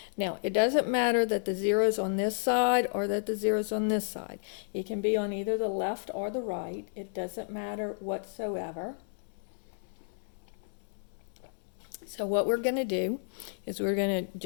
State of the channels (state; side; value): silent; right; digital silence